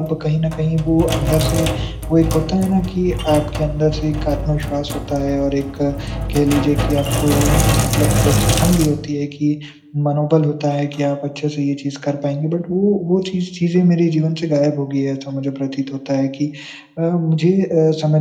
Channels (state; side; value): identical; both; correlation 1.00